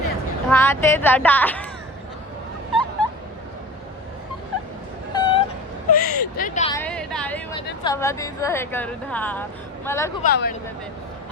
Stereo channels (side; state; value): both; normal; correlation 0.35